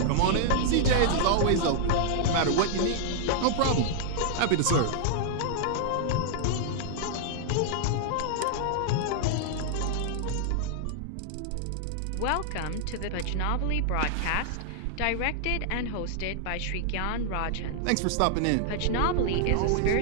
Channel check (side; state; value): both; different; correlation -0.01